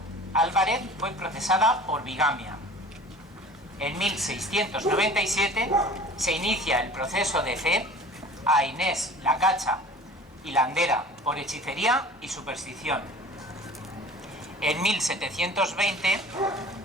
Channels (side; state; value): both; normal; correlation 0.43